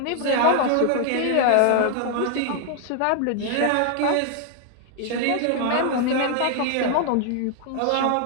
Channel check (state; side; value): different; both; correlation 0.00